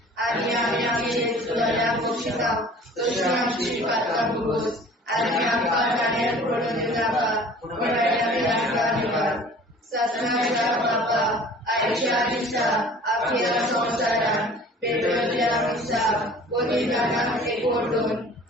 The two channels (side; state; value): both; normal; correlation 0.47